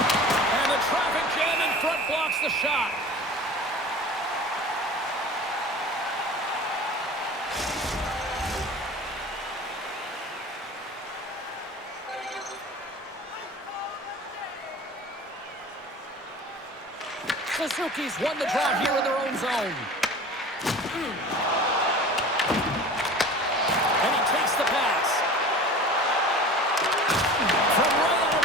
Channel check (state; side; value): normal; both; correlation 0.39